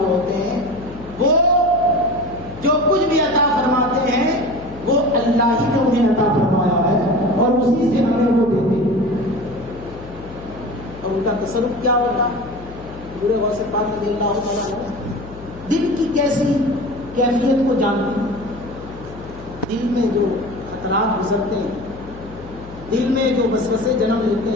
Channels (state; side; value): noise; left; hum, 16 dB below the sound